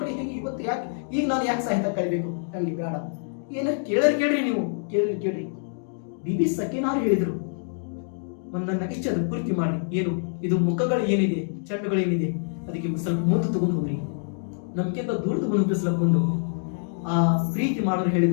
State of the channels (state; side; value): silent; right; digital silence